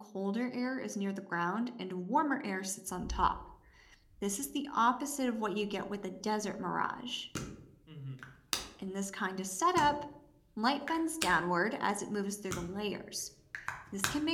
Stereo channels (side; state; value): both; identical; correlation 1.00